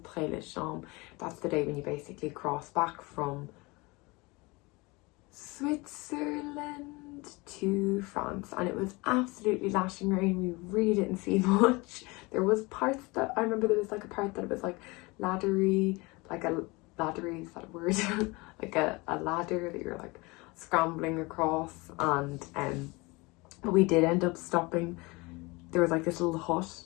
That's the day when you basically cross back from Switzerland to France, and it was absolutely lashing rain. We really didn't see much. There was parts that I remember, there was like a part that it was like laddery, like a laddery, is that a word? Like a ladder that you're like scrambling across, and but we did end up stopping. There was like this little hut,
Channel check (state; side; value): quieter; right; 24.9 dB